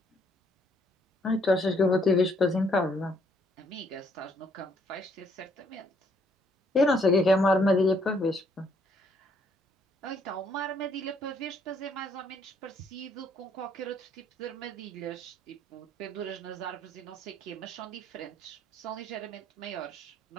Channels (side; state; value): both; normal; correlation 0.67